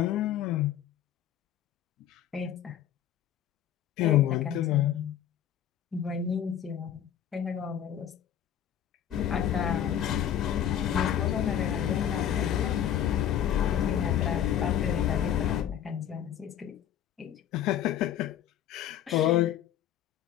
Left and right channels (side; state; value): right; quieter; 10.2 dB